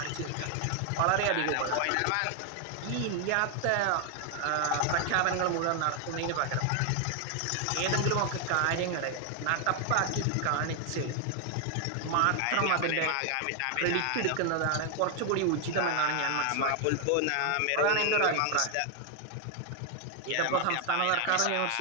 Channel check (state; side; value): different; both; correlation 0.00